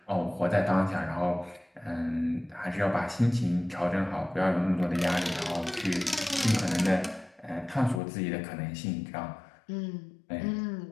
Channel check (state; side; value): drops out; right; at 8.0 s